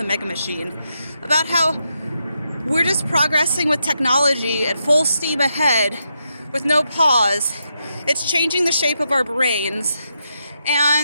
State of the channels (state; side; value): inverted; both; correlation -0.83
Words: Mega Machine about how we're just progressing with technology at full steam ahead with no pause. It's changing the shape of our brains,